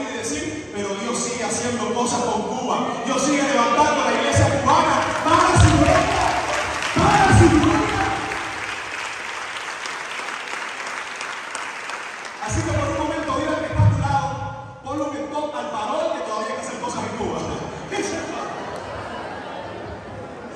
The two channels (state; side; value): identical; both; correlation 1.00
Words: y decir: pero Dios sigue haciendo cosas con Cuba, Dios sigue levantando a la iglesia cubana para su gloria, para su gloria. Así que por un momento, dile al que está a tu lado, ponlo en top al parol, que todavía hay que hacer cosas en Cuba.